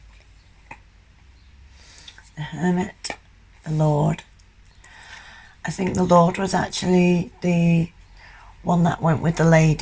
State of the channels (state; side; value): identical; both; correlation 1.00